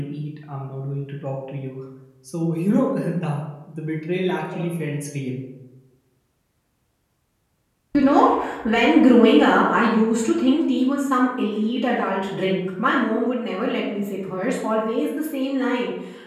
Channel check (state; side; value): identical; both; correlation 1.00